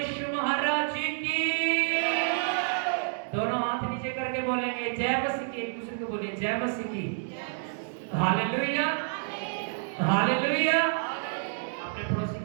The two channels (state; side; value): silent; left; digital silence